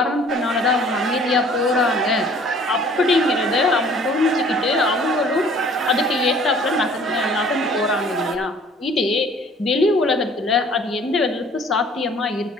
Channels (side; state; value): both; normal; correlation 0.53